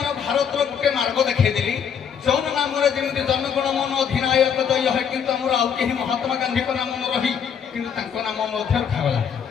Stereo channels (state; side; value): quieter; right; 7.6 dB